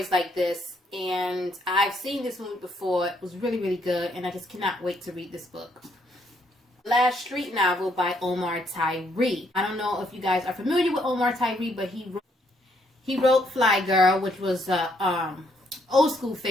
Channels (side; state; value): both; normal; correlation 0.71